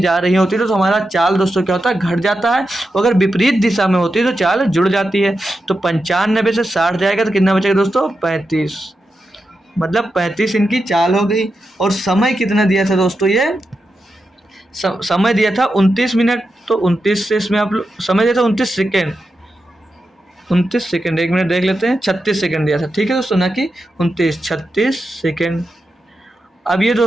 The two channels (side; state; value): both; normal; correlation 0.88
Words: जा रही होती है तो हमारा चाल दोस्तों क्या होता है? घट जाता है। अगर विपरीत दिशा में होती है तो चाल जुड़ जाती है। तो 95 से 60 जाएगा तो कितना बचेगा दोस्तों? 35। मतलब 35 इनकी चाल हो गई। और समय कितना दिया था दोस्तों? ये समय दिया था 29 मिनट। तो 29 से इसमें आप समय दिया था 29 सेकेंड। 29 सेकेंड, 1 मिनट देख लेते हैं। 36 सेकेंड दिया था। ठीक है दोस्तों, ना कि 29, 36 सेकेंड। अब ये